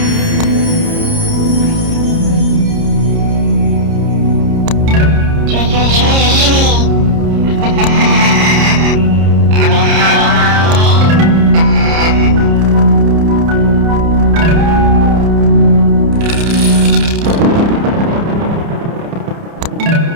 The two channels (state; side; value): late; left; 30 ms